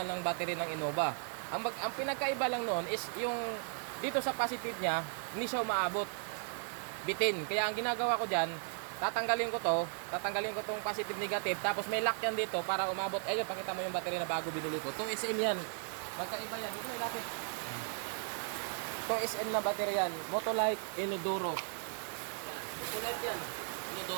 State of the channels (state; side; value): silent; left; 54 dB below the other